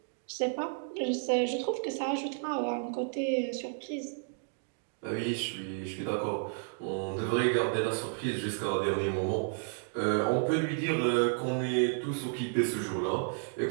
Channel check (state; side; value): silent; left; 56 dB below the other